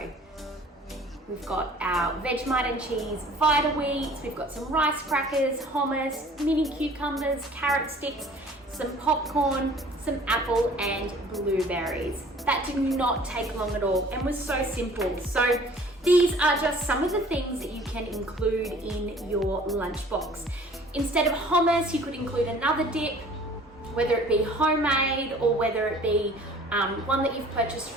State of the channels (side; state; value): both; normal; correlation 0.50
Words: We've got our Vegemite and cheese vita wheats, we've got some rice crackers, hummus, mini cucumbers, carrot sticks, some popcorn, some apple and blueberries. That did not take long at all and was so simple. So these are just some of the things that you can include in your lunchbox. Instead of hummus, you could include another dip, whether it be homemade or whether it be one that you've purchased